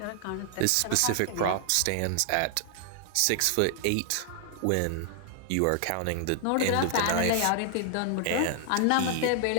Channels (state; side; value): different; both; correlation 0.00